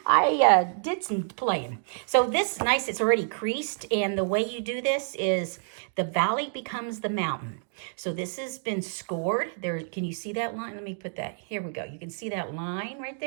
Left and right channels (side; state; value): left; silent; digital silence